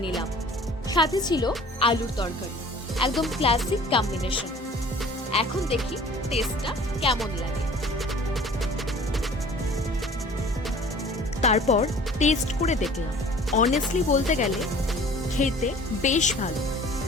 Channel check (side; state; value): both; normal; correlation 0.48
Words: নিলাম। সাথে ছিল আলুর তরকারি, একদম ক্লাসিক কম্বিনেশন। এখন দেখি টেস্টটা কেমন লাগে। তারপর টেস্ট করে দেখলাম। অনেস্টলি বলতে গেলে খেতে বেশ ভালো।